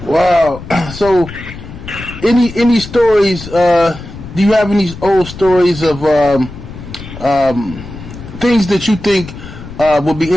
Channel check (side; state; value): left; noise; rumble, 13 dB below the sound